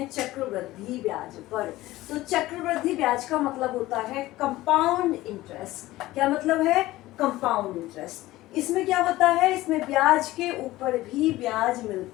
चक्रवृद्धि ब्याज पर। तो चक्रवृद्धि ब्याज का मतलब होता है कंपाउंड इंटरेस्ट। क्या मतलब है? Compound interest. इसमें क्या होता है? इसमें ब्याज के ऊपर भी ब्याज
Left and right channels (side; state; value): right; quieter; 17.2 dB